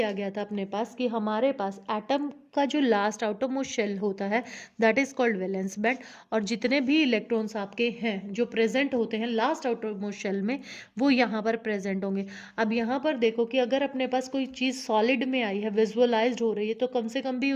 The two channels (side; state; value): both; identical; correlation 1.00